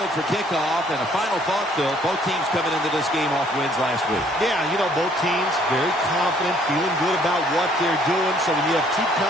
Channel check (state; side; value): normal; both; correlation 0.62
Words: for kickoff. And a final thought, Phil, both teams coming into this game off wins last week. Yeah, you know, both teams very confident, feeling good about what they're doing. So when you have two